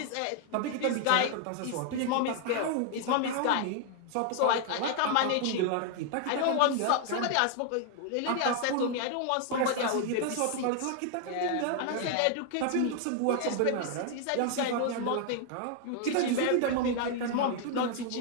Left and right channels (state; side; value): different; both; correlation 0.00